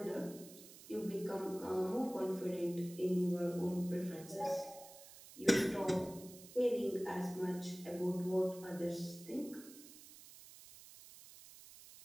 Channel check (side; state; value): right; noise; hiss, 18 dB below the sound